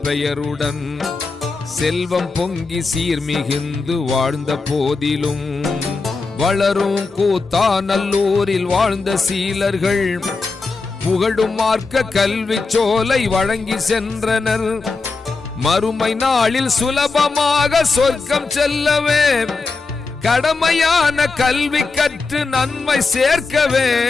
பெயருடன் செல்வம் பொங்கி சீர்மிகுந்து வாழ்ந்த போதிலும், வளரும் கூத்தாநல்லூரில் வாழ்ந்த சீலர்கள் புகழும் மார்க்க கல்வி சோலை வழங்கி சென்றனர். மறுமை நாளில் சுலபமாக சொர்க்கம் செல்லவே கடமையான கல்வி கற்று நன்மை சேர்க்கவே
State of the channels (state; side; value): quieter; right; 4.1 dB